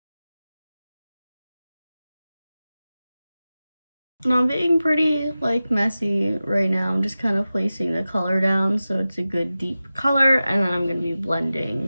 And I'm being pretty like messy right now. I'm just kind of placing the color down so it's a good deep color, and then I'm going to be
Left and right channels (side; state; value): both; inverted; correlation -0.95